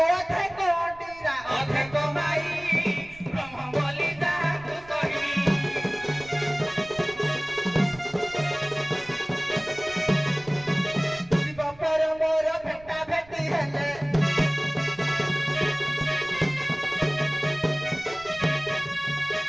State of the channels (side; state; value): right; noise; rumble, 23 dB below the sound